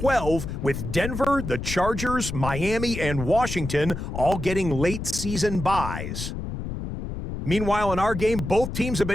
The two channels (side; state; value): left; noise; rumble, 6 dB below the sound